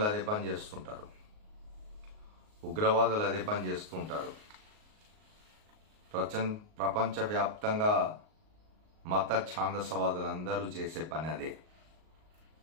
అదే పని చేస్తుంటారు, ఉగ్రవాదులు అదే పని చేస్తుంటారు. ప్రపంచవ్యాప్తంగా మత ఛాందసవాదులందరూ చేసే పని అదే.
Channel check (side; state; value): left; late; 38 ms